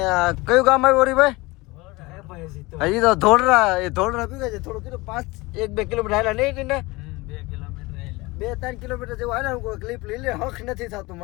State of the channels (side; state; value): right; quieter; 22.7 dB